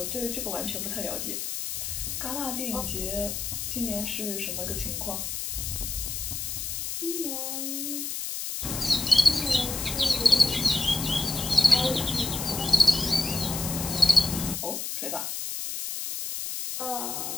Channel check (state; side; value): noise; left; hiss, 4 dB below the sound